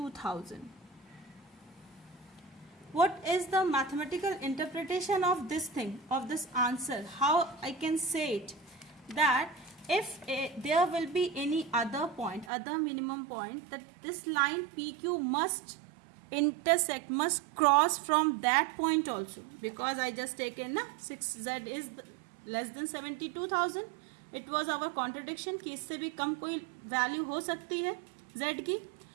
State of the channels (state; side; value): drops out; left; at 12.5 s